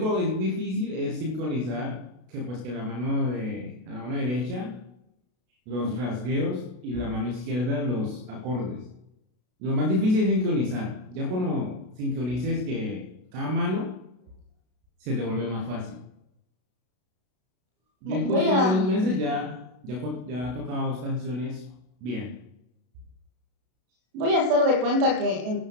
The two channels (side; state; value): left; late; 32 ms